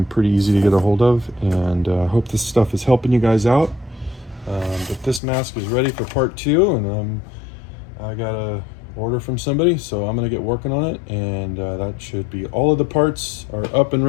pretty easy to get a hold of, and I hope this stuff is helping you guys out. But this mask is ready for part 2, and I got a order from somebody, so I'm gonna get working on it, and that should be all of the parts are up and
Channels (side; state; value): right; drops out; at 5.2 s